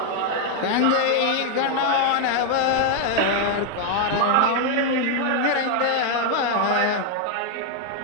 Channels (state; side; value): different; both; correlation 0.00